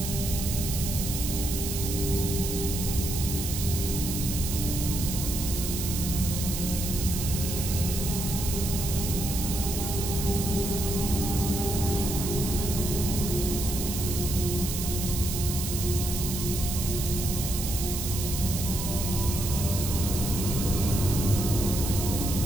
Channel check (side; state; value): right; noise; hiss, 4 dB below the sound